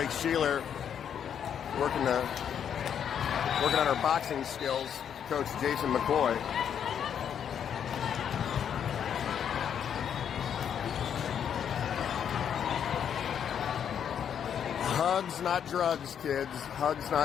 Blake Sheeler working on her boxing skills. Coach Jason McCoy. Hugs, not drugs, kids. Hugs,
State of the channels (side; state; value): right; quieter; 8.5 dB